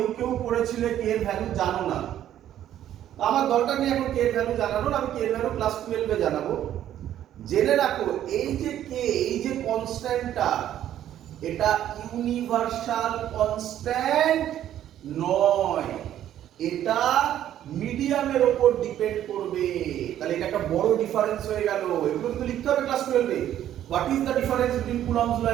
কেউ পড়েছিলে কে এর ভ্যালু জানো না। আমার দরকার নেই এখন কে এর ভ্যালু জানানোর, আমি কে এর ভ্যালু ক্লাস 12-এ জানাবো। জেনে রাখো, এই যে কে, এই যে কনস্ট্যান্টটা, এটা ইউনিভার্সাল কনস্ট্যান্ট নয়, এটা মিডিয়ামের উপর ডিপেন্ড করবে। তাহলে এটা একটা বড় ডিফারেন্স হয়ে গেল, এগুলো কিন্তু লিখতে হবে ক্লাস 12-এ। What is the difference between Coulomb's law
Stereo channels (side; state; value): left; quieter; 11.5 dB